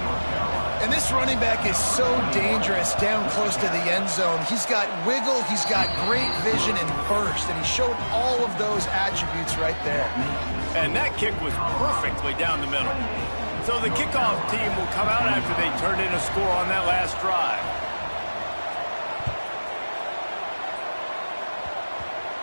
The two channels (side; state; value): both; inverted; correlation -1.00